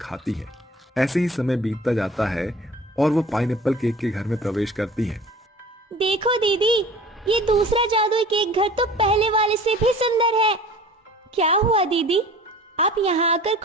हैं। ऐसे ही समय बीतता जाता है और वो पाइनएप्पल केक के घर में प्रवेश करती हैं। देखो दीदी, ये दूसरा जादुई केक घर तो पहले वाले से भी सुंदर है। क्या हुआ दीदी, आप यहाँ आकर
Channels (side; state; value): both; normal; correlation 0.44